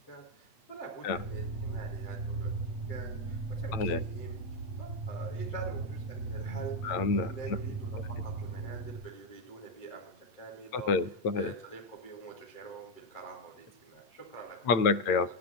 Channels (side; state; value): right; late; 8.8 ms